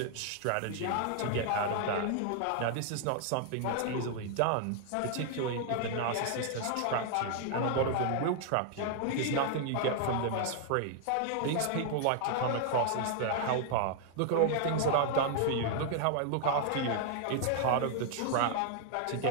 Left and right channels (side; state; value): both; different; correlation 0.00